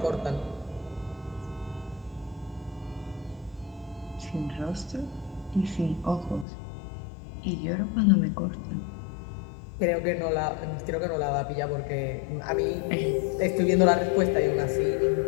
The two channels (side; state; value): right; drops out; at 6.5 s